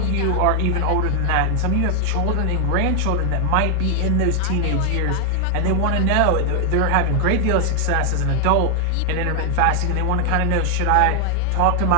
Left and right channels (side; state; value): both; different; correlation 0.00